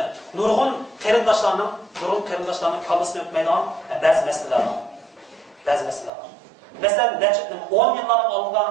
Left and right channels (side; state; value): left; drops out; at 6.1 s